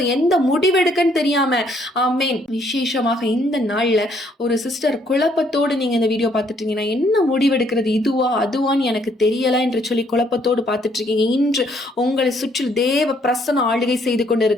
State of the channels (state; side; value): normal; both; correlation 0.67